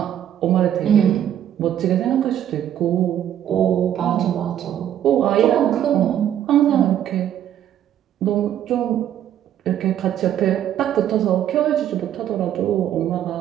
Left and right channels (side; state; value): left; quieter; 10.7 dB